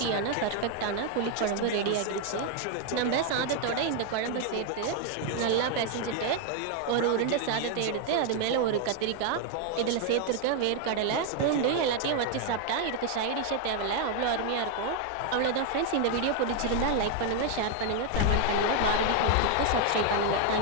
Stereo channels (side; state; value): both; different; correlation 0.01